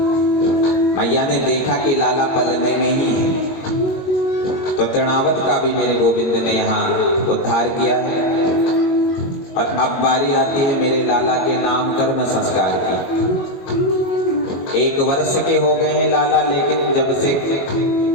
मैया ने देखा कि लाला पलने में ही है तो तृणावत का भी मेरे गोविंद ने यहाँ उद्धार किया है। और अब बारी आती है मेरे लाला के नाम कर्म संस्कार की। 1 वर्ष के हो गए हैं लाला, लेकिन जब से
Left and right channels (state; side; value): late; right; 22 ms